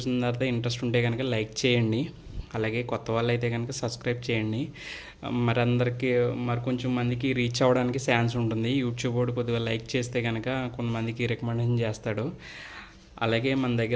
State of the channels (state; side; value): identical; both; correlation 1.00